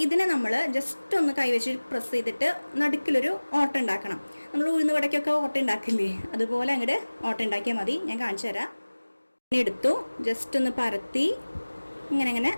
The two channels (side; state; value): both; inverted; correlation -1.00